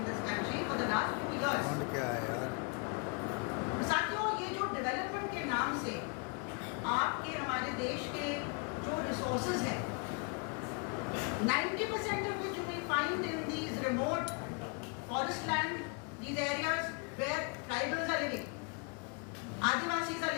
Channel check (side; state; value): right; quieter; 35.8 dB